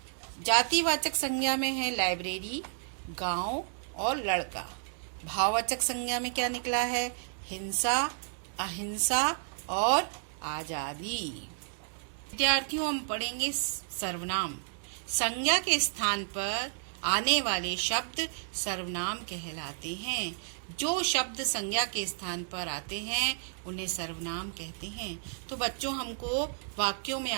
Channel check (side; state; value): left; silent; digital silence